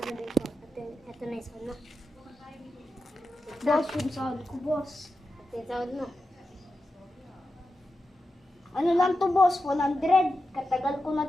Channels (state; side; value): normal; both; correlation 0.90